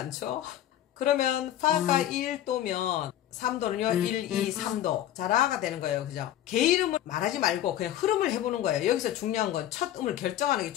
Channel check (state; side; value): quieter; right; 12.2 dB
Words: 그러면 파가 1도면 3도는요 1, 2, 3도 자 라가 되는 거예요. 그죠? 개 이름을 말하지 말고 그냥 흐름을 해보는 거예요. 여기서 중요한 건 첫 음을 결정하는 게